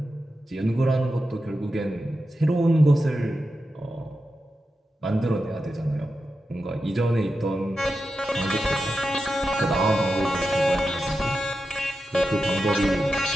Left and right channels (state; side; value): normal; both; correlation 0.90